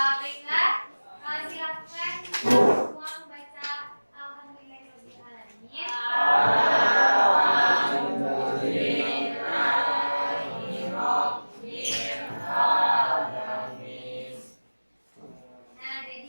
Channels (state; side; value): inverted; both; correlation -1.00